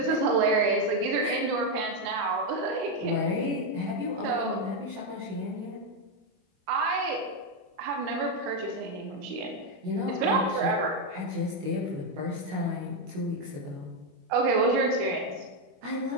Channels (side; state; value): left; late; 21 ms